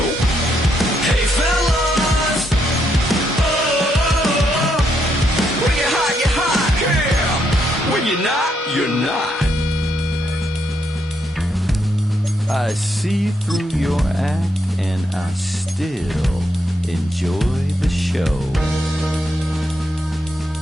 Hey fellas, oh, when you're hot, girl. When you're not, you're not. I see through your act and I still enjoy the show.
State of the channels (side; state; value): both; normal; correlation 0.78